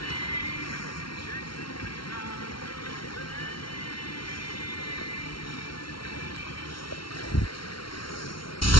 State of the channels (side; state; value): right; late; 0.74 ms